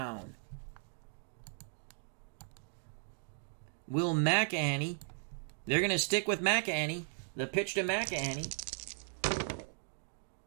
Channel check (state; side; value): silent; left; 53 dB below the other